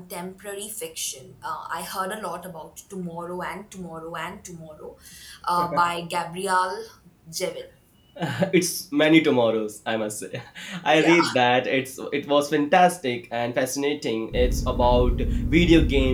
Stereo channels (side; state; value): both; identical; correlation 1.00